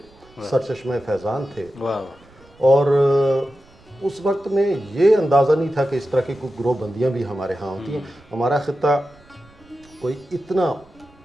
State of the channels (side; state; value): right; noise; rumble, 27 dB below the sound